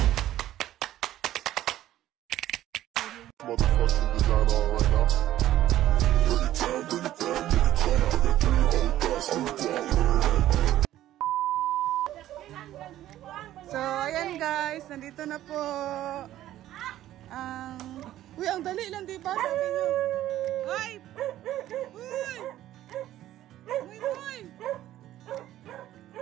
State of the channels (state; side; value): quieter; left; 13.4 dB